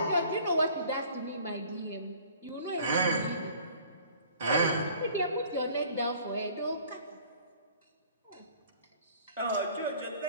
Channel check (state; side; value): inverted; both; correlation -0.51